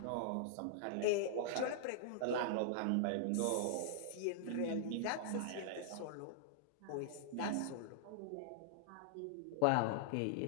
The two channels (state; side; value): different; both; correlation -0.01